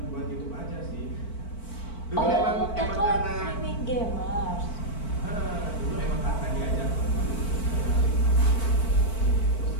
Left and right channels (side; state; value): right; late; 4.5 ms